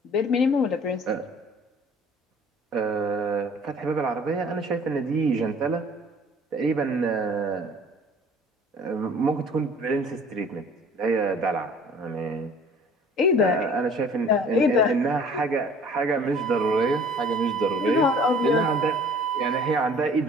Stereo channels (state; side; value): normal; both; correlation 0.51